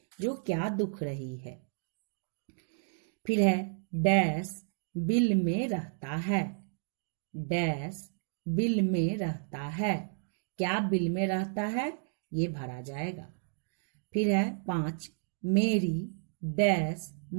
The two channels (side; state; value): left; silent; digital silence